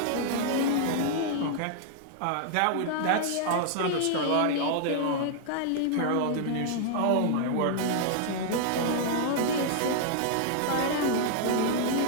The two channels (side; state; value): both; different; correlation -0.01